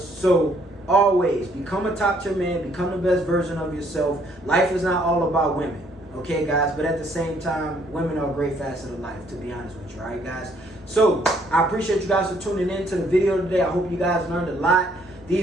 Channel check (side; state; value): both; normal; correlation 0.66